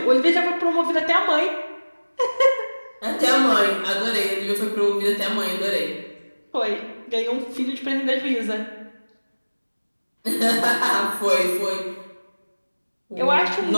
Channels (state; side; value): inverted; both; correlation -1.00